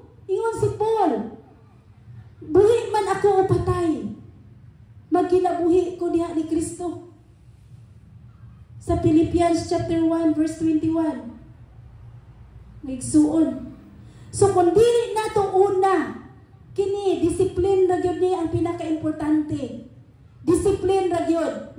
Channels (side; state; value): both; identical; correlation 1.00